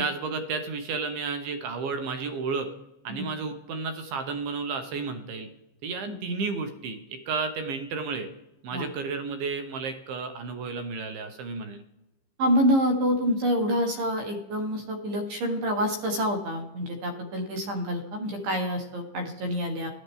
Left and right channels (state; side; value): late; left; 15 ms